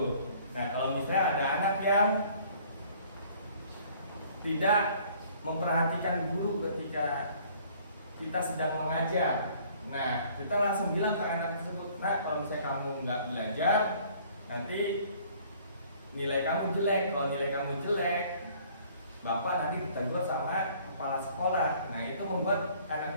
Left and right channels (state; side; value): inverted; both; correlation -0.56